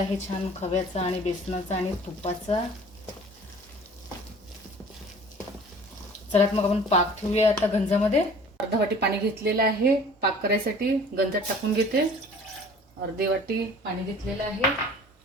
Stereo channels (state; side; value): normal; both; correlation 0.47